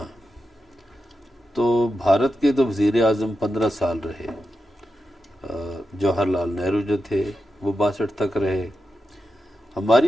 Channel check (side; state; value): both; normal; correlation 0.89